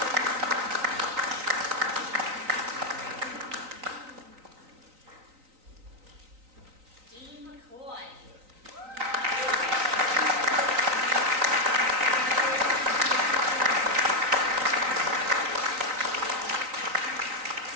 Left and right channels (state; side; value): late; left; 3.9 ms